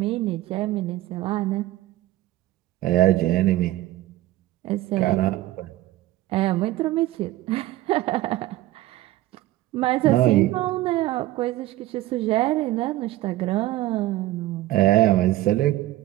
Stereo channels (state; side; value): quieter; left; 16.0 dB